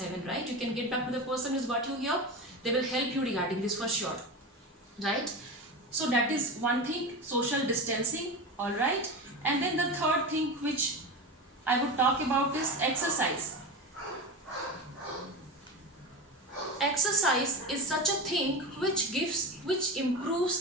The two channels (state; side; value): normal; both; correlation 0.24